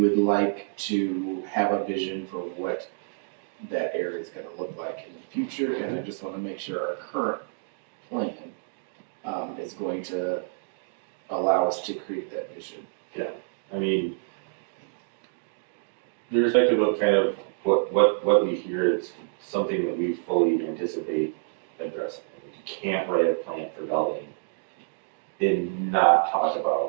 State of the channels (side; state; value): left; silent; digital silence